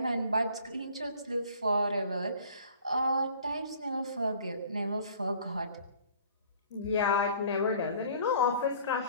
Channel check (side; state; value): both; inverted; correlation -0.52